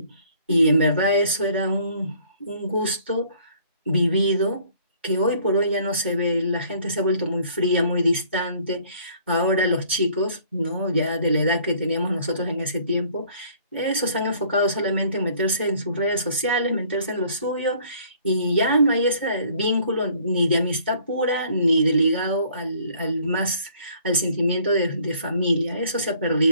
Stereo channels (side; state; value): both; inverted; correlation -0.58